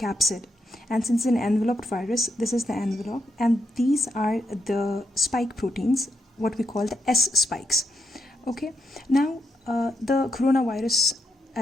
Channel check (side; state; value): both; normal; correlation 0.82